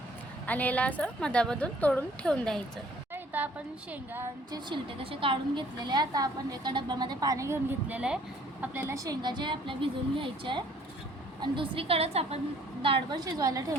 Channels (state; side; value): normal; both; correlation 0.58